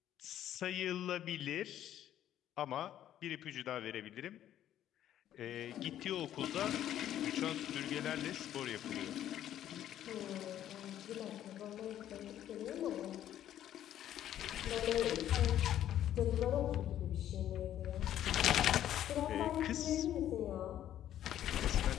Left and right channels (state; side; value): quieter; right; 11.5 dB